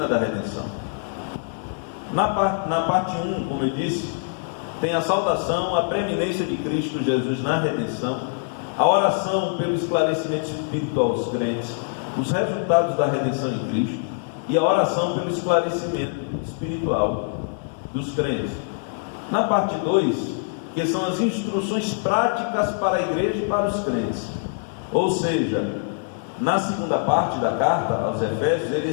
da redenção. Na parte 1, como eu disse, tem a saudação, a preeminência de Cristo Jesus na redenção, a oração pelo esclarecimento espiritual aos crentes, os resultados da redenção em Cristo e a oração pelo esclarecimento espiritual dos crentes. Na parte 2, que são as instruções práticas para a igreja e para os crentes. Ou seja, na segunda parte da carta aos Efésios, ele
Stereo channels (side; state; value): right; silent; digital silence